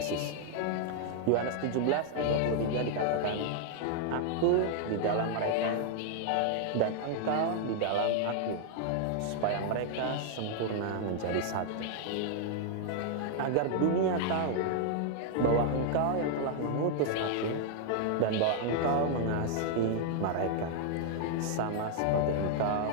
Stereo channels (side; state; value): both; different; correlation 0.00